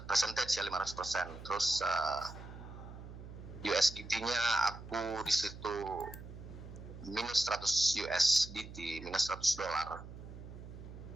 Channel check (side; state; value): right; noise; hum, 13 dB below the sound